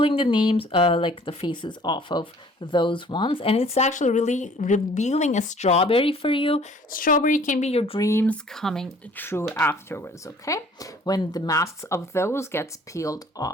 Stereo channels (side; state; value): both; normal; correlation 0.54